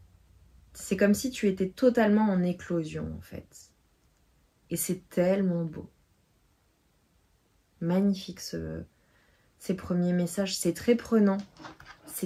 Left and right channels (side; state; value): both; identical; correlation 1.00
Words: C'est comme si tu étais totalement en éclosion en fait. Et c'est tellement beau. Magnifique ces premiers messages. C'est très prenant.